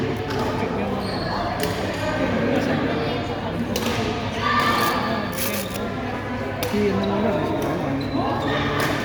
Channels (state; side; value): identical; both; correlation 1.00